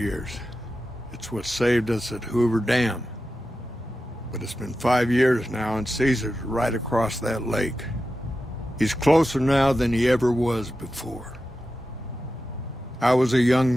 It's what saved us at Hoover Dam. But it's been 5 years now, and Caesar's right across that lake. He's closer now than he ever was before. I was a young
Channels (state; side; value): normal; both; correlation 0.91